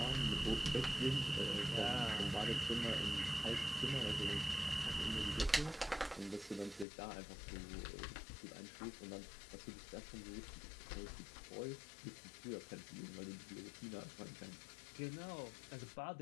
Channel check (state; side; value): drops out; right; at 6.9 s